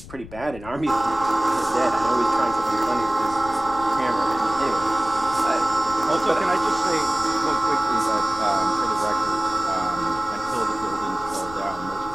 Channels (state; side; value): noise; left; rumble, 16 dB below the sound